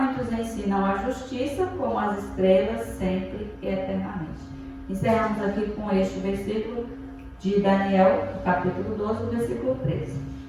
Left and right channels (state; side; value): identical; both; correlation 1.00